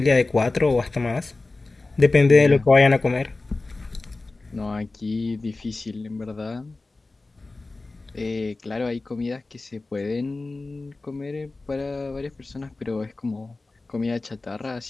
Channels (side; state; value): right; quieter; 3.3 dB